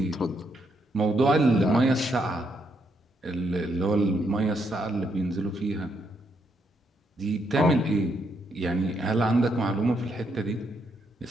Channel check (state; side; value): normal; both; correlation 0.77